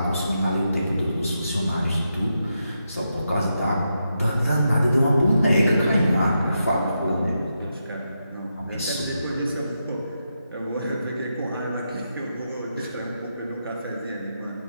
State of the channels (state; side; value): inverted; both; correlation -0.85